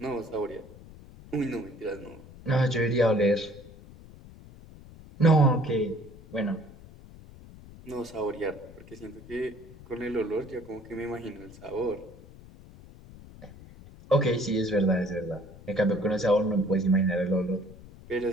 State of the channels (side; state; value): left; noise; rumble, 19 dB below the sound